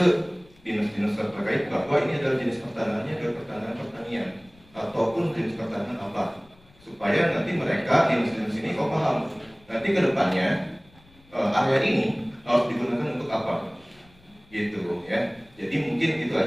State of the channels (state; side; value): noise; left; rumble, 28 dB below the sound